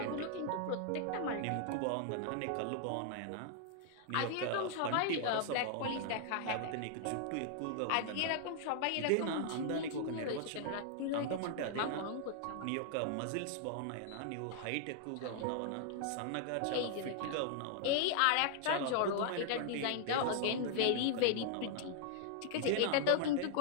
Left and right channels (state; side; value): different; both; correlation 0.00